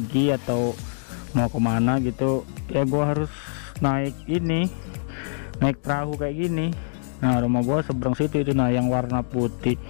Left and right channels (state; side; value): silent; right; digital silence